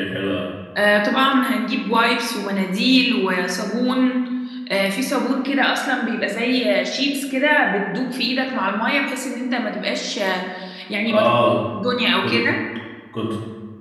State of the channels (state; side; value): identical; both; correlation 1.00